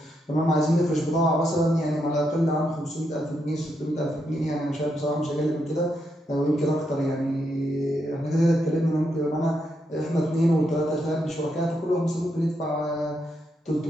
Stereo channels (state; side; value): normal; both; correlation 0.81